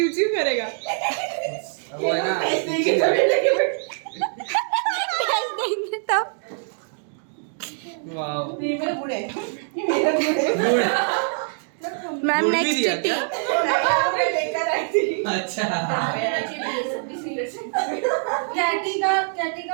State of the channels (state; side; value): silent; left; digital silence